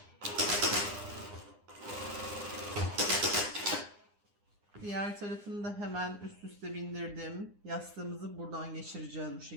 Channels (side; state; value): left; late; 9.8 ms